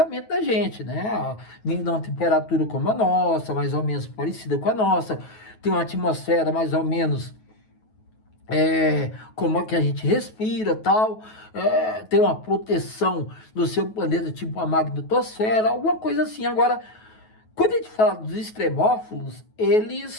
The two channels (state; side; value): late; right; 9.3 ms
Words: da gente, né? Vindo de uma temperatura como a nossa, mais ou menos parecida com a nossa, tem uma atmosfera mais ou menos como é que a gente respira, tal, tem uma proteção do seu planeta, tipo a magnetosfera, alguma coisa assim. Agora, quando a gente fala dos extremófilos,